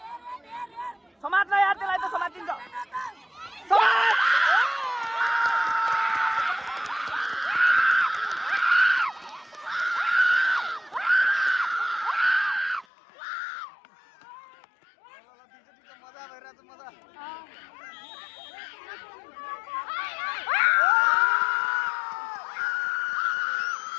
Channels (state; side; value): drops out; right; at 12.9 s